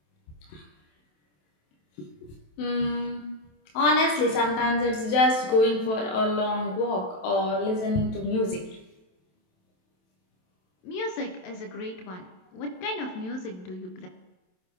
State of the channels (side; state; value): right; late; 27 ms